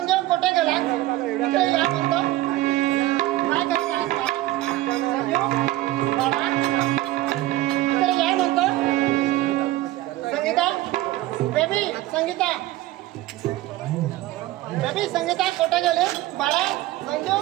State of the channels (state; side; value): quieter; left; 16.4 dB